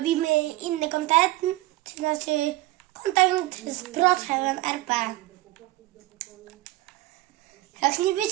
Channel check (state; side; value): quieter; left; 18.0 dB